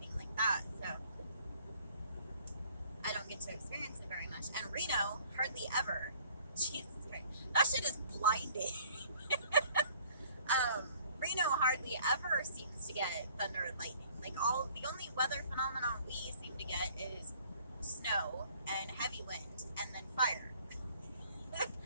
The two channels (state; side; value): inverted; both; correlation -0.56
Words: like that. So, I don't get to experience it very much. And Reno, hardly ever. Jesus Christ. That shit is blinding. Reno hardly ever seems to get thunder and lightning. Like the only weather phenomenon we seem to get is snow and heavy wind and then fire.